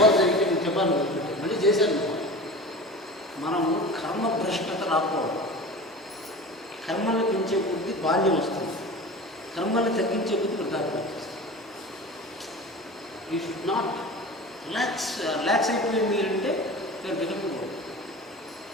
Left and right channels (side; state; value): both; normal; correlation 0.34